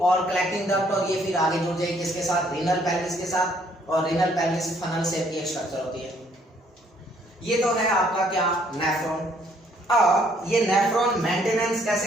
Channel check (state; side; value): normal; both; correlation 0.65